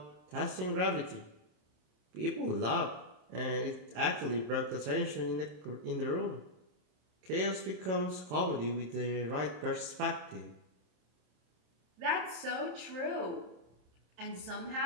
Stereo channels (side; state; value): left; late; 27 ms